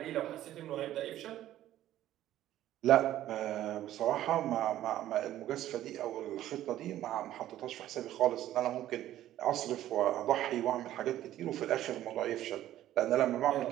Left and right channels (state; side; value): quieter; left; 13.1 dB